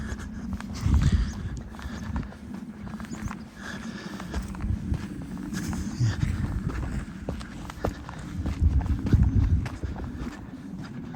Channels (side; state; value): both; identical; correlation 1.00